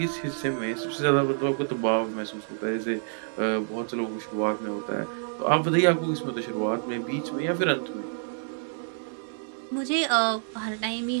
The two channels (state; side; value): silent; left; digital silence